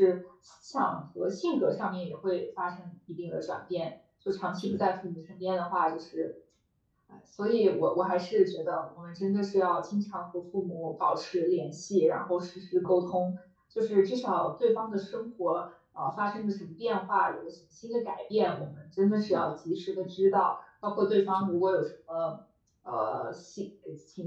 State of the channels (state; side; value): identical; both; correlation 1.00